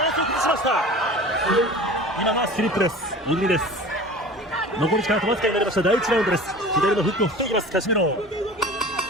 ランスを崩しました今がスリップです入りです残り時間あとわずかになりました第1ラウンドです左のフックを振っていきますカシメロ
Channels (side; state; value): both; normal; correlation 0.39